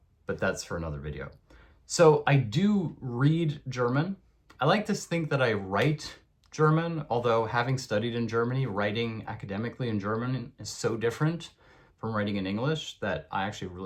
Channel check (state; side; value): identical; both; correlation 1.00